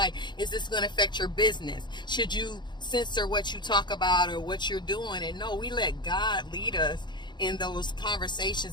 is this going to affect your business? Should you censor what you talk about or what you're doing? And no, we let God lead us in those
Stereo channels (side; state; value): right; late; 0.22 ms